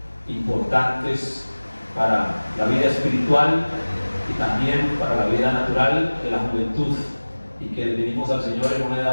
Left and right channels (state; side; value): inverted; both; correlation -1.00